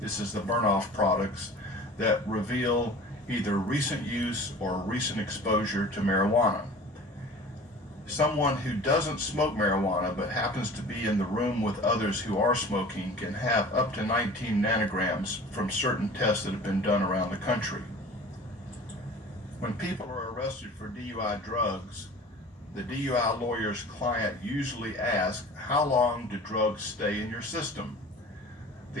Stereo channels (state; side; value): normal; both; correlation 0.42